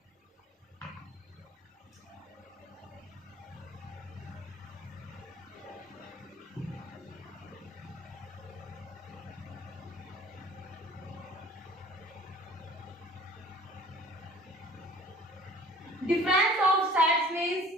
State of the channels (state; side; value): normal; both; correlation 0.49